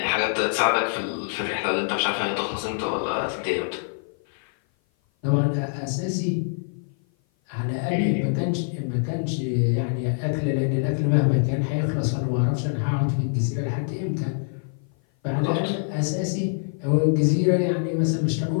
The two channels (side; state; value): right; silent; 56 dB below the other